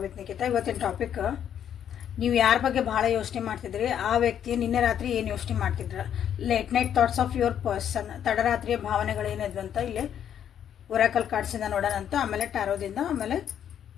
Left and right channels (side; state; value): right; quieter; 9.4 dB